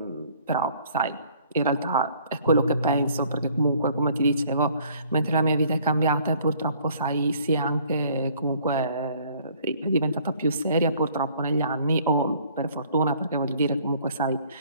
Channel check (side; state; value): both; inverted; correlation -0.58